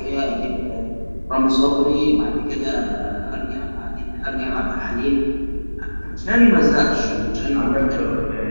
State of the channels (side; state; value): both; inverted; correlation -1.00